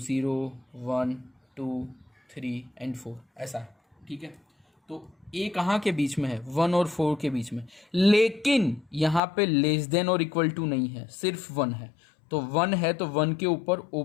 1 2 3 एंड 4, ऐसा है। ठीक है, तो ए कहाँ के बीच में है, 1 और 4 के बीच में, लेकिन यहाँ पे लेस देन और इक्वल टू नहीं है, सिर्फ 1 है। तो 1 है तो 1 के ऊपर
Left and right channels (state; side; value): drops out; right; at 9.2 s